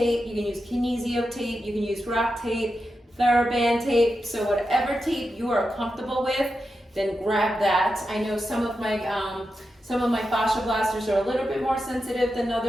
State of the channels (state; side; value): normal; both; correlation 0.89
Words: you can use Kinesio tape, you can use rock tape, TheraBand tape. So whatever tape you are comfortable with, then grab that. I know some of my fascia blasters are a little bit more sensitive than